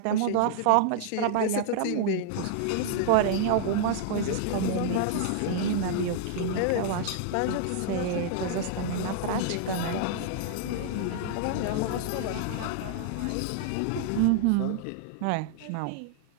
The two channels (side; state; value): both; different; correlation -0.01